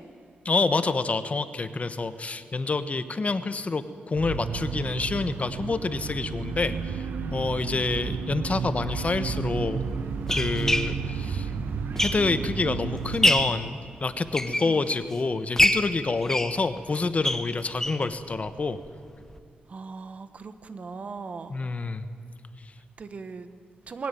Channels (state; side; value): normal; both; correlation 0.79